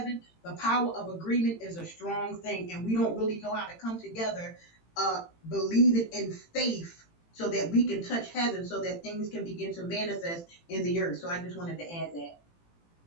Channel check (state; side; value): late; right; 18 ms